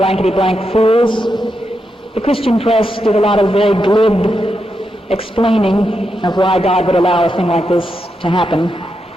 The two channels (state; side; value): normal; both; correlation 0.85